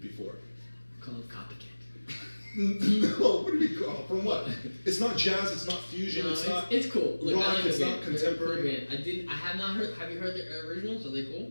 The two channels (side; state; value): both; inverted; correlation -1.00